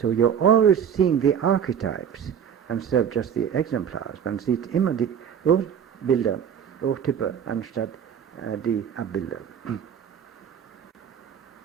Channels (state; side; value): quieter; left; 8.2 dB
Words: you're always seeing the archetypes instead of just the exemplars. Man sieht immer die Bilder, Urtypen, anstatt die Abbilder.